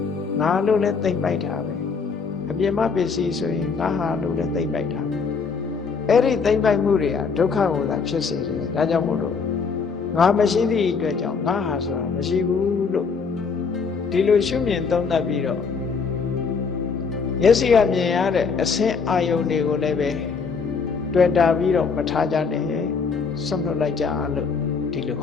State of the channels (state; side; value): quieter; right; 5.3 dB